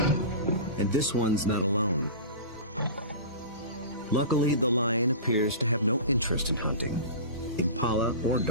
And this one's not alone. Luckily, the lion appears to have no interest in hunting, impala or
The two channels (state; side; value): inverted; both; correlation -0.32